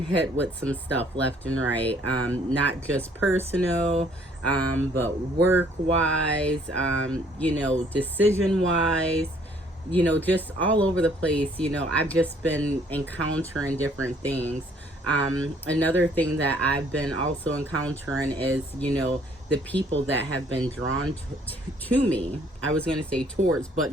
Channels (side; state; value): both; normal; correlation 0.62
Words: hit with some stuff left and right, not just personal, but work wise, decision wise, just all over the place. I've just been encountering different things. Another thing that I've been also encountering is, the people that have been drawn to me. I was going to say towards, but